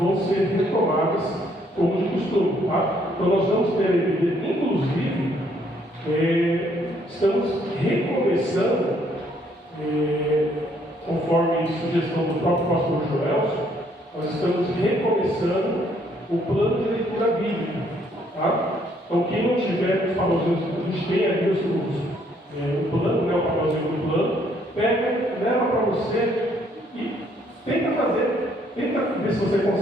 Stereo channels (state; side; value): normal; both; correlation 0.67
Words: ser retomadas como de costume. Tá? Então nós vamos ter a igreja, inclusive, estamos recomeçando, conforme sugestão do próprio pastor Joelson, nós estamos recomeçando o plano de leitura bíblica. Tá? Então, quem não tiver os papelzinhos, a gente tem ali o plano, né, o papelzinho do plano, pega, leva para você e tenta ver se você